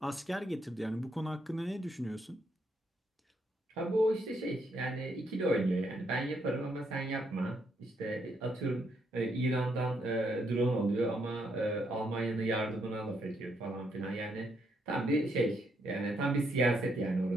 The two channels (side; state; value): both; normal; correlation 0.75